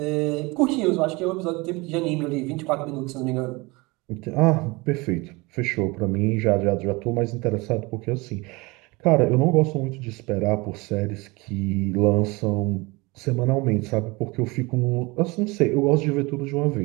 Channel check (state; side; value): quieter; left; 24.7 dB